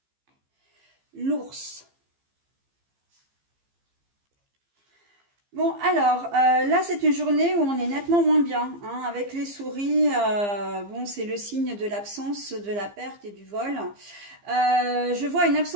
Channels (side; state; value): left; late; 15 ms